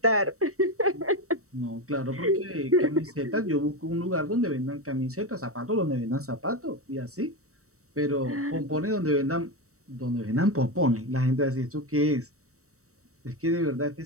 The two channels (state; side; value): late; left; 0.65 ms